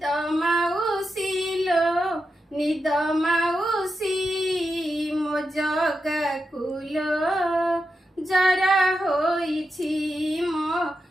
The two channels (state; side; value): normal; both; correlation 0.88